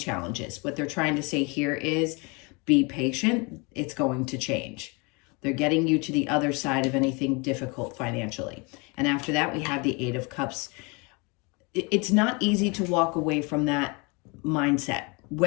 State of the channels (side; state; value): right; quieter; 29.6 dB